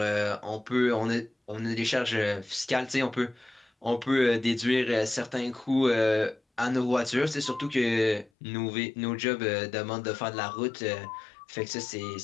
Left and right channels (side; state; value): right; drops out; at 8.3 s